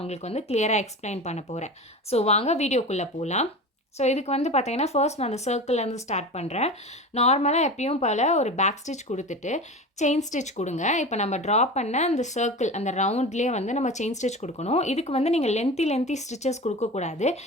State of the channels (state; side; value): normal; both; correlation 0.31